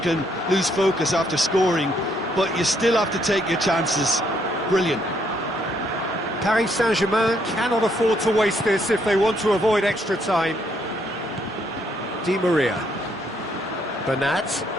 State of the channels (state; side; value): normal; both; correlation 0.71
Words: lose focus after scoring, but you still have to take your chances. Brilliant. Paris Saint-Germain cannot afford to waste this if they want to avoid extra time. Di Maria. Bernat.